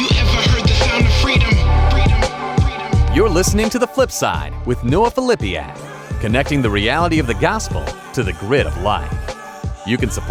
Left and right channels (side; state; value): both; identical; correlation 1.00